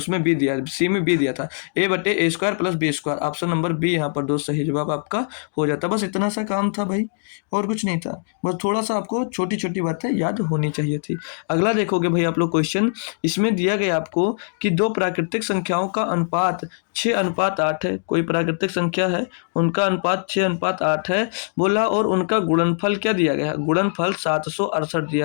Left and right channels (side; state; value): right; silent; digital silence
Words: बी दिया, सी में बी दिया था। ए बटे A square plus B square, option number B यहाँ पर दोस्त सही जवाब आपका हो जाता। बस इतना सा काम था भाई, और कुछ नहीं था। बस थोड़ा सा आपको छोटी छोटी बातें याद होनी चाहिए थी। अगला देखोगे भाई आप लोग क्वेश्चन, इसमें दिया गया आपको कि दो प्राकृतिक संख्याओं का अनुपात 6:8 है। कोई प्राकृतिक संख्या है, उनका अनुपात 6:8 है बोला, और उनका गुणनफल क्या दिया गया है? गुणनफल 768